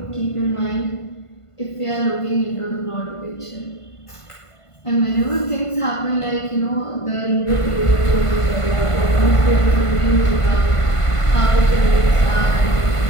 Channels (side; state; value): right; late; 1.5 ms